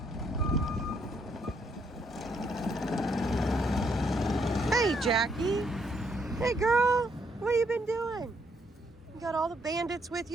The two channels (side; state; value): both; normal; correlation 0.72